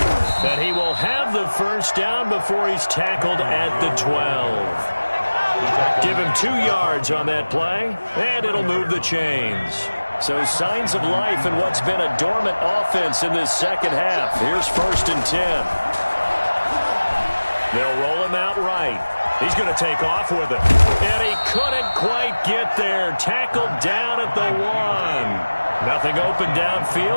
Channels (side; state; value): both; inverted; correlation -1.00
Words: he's tackled at the 12. Give him 2 yards on that play, and it'll move the chains. So signs of life in what's been a dormant offense in this second half. Here's 1st and 10. They'll roll him out right. He's going to take off with it. And he couldn't quite get there. Tackled down at the 1. Nothing open